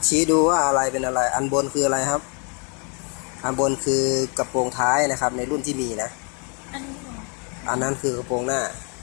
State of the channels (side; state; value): right; quieter; 36.8 dB